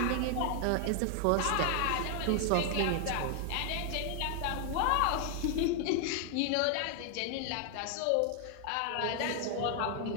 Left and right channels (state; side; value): different; both; correlation 0.00